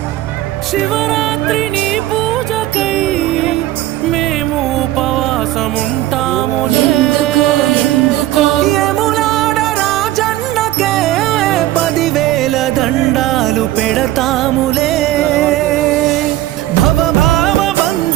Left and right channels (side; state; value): left; quieter; 15.1 dB